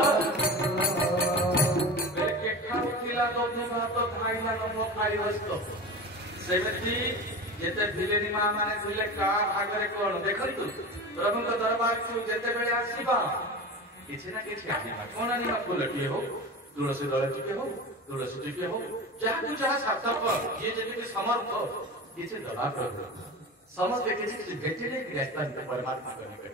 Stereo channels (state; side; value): normal; both; correlation 0.29